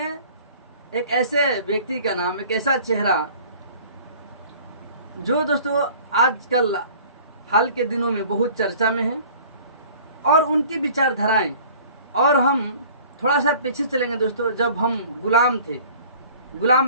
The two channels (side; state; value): both; inverted; correlation -0.48